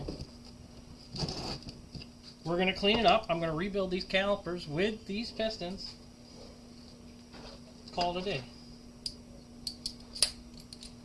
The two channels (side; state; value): both; identical; correlation 1.00